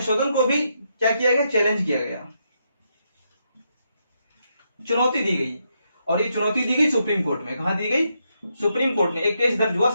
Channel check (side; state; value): both; inverted; correlation -0.80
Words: को भी क्या किया गया, चैलेंज किया गया, चुनौती दी गई। और ये चुनौती दी गई सुप्रीम कोर्ट में। कहां दी गई, सुप्रीम कोर्ट में। एक केस दर्ज हुआ